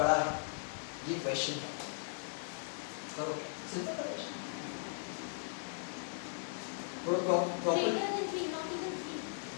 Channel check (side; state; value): right; silent; 52 dB below the other